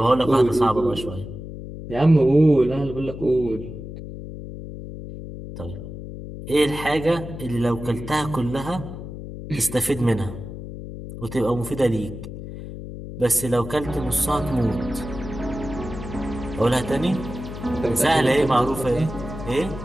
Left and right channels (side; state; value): left; noise; hum, 10 dB below the sound